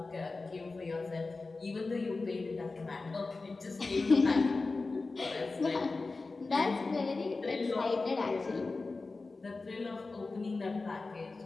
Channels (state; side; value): quieter; right; 3.7 dB